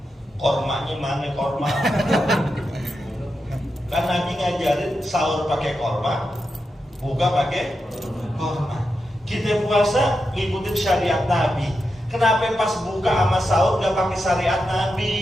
Kormanya mana korma? Kan Nabi ngajarin sahur pakai korma, buka pakai korma. Kita puasa ngikutin syariat Nabi. Kenapa pas buka sama sahur gak pakai syariat Nabi?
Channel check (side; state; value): both; normal; correlation 0.87